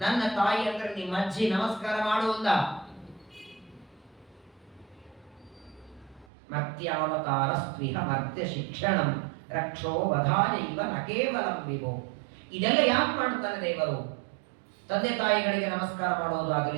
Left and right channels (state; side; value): drops out; left; at 6.2 s